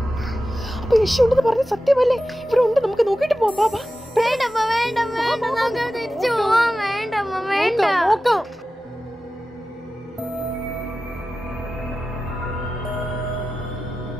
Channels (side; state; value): both; normal; correlation 0.94